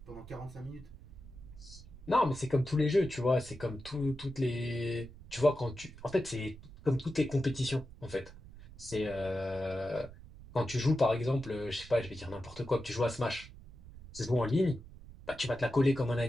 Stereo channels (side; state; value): right; noise; rumble, 17 dB below the sound